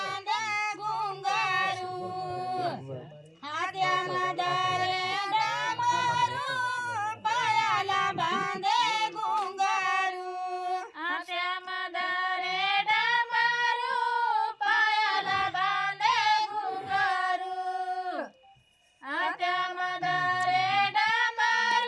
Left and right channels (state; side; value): identical; both; correlation 1.00